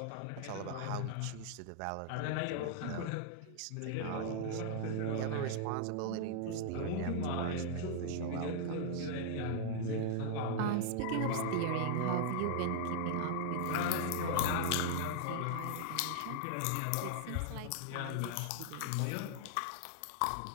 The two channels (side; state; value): both; different; correlation -0.01